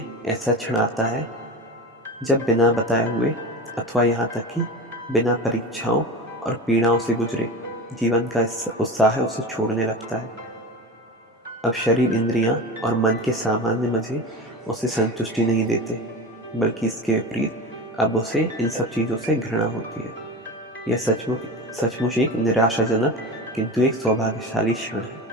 ऐसा क्षण आता है जब बिना बताए हुए अथवा यहाँ तक कि बिना परीक्षाओं और पीड़ाओं से गुजरे जीवन का उत्साह उसे छोड़ने लगता है। अब शरीर, इंद्रियां और मन के सामान्य मजे उसे संतुष्टि नहीं देते, बल्कि इसके विपरीत अब उसे इन सब चीज़ों से घृणा होती है। यह सचमुच एक निराशाजनक किंतु एक सौभाग्यशाली क्षण है।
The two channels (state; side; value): normal; both; correlation 0.28